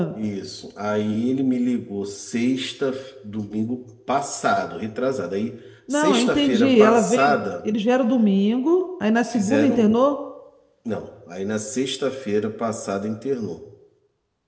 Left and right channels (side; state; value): both; identical; correlation 1.00